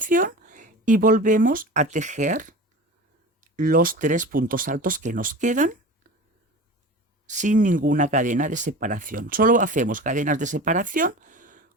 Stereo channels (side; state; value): both; normal; correlation 0.34